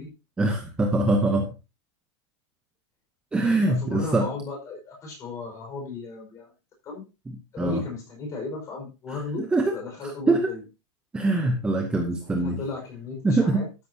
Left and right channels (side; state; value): both; normal; correlation 0.61